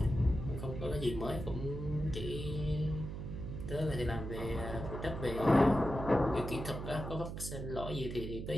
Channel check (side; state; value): right; noise; hum, 6 dB below the sound